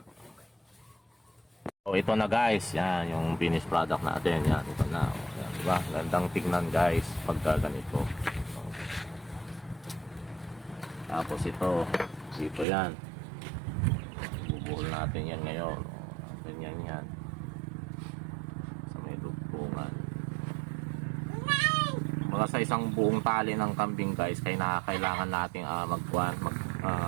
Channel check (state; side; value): drops out; left; at 12.7 s